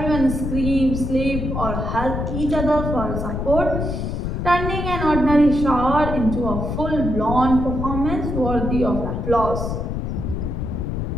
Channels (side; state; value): left; noise; rumble, 3 dB below the sound